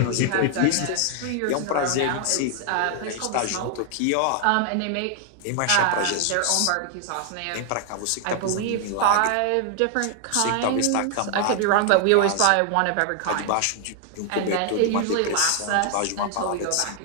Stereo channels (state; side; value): different; both; correlation 0.00